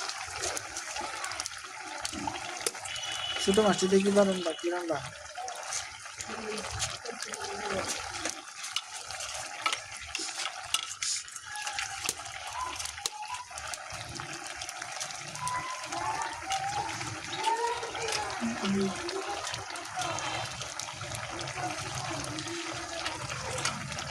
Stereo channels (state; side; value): identical; both; correlation 1.00